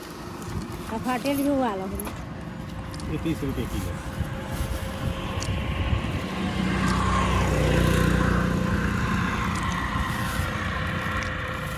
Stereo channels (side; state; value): both; identical; correlation 1.00